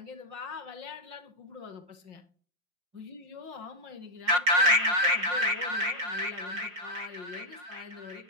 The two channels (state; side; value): late; left; 5.6 ms